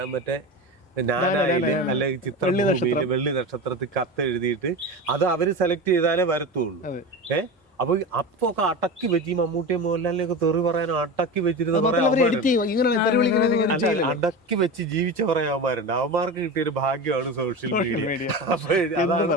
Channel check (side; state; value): both; normal; correlation 0.26